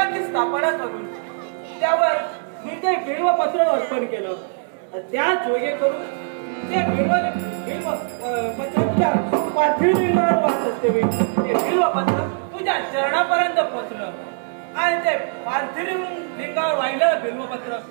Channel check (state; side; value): silent; left; digital silence